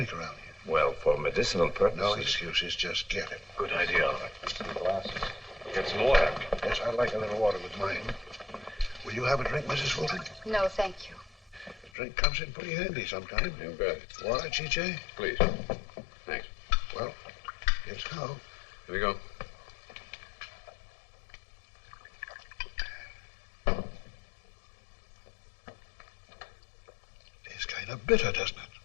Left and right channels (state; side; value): drops out; right; at 11.9 s